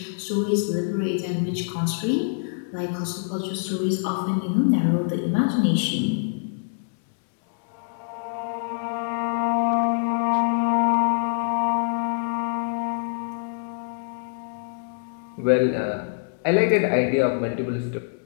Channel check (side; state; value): right; silent; digital silence